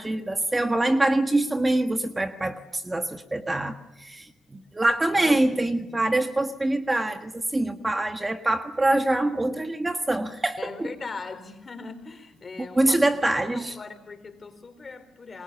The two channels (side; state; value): both; normal; correlation 0.97